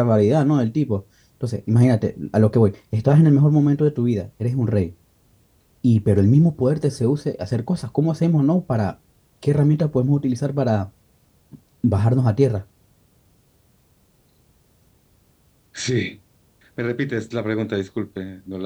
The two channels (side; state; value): both; identical; correlation 1.00